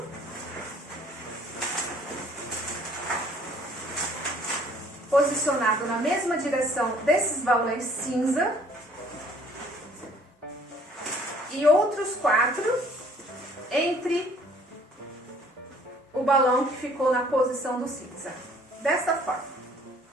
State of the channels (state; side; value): normal; both; correlation 0.57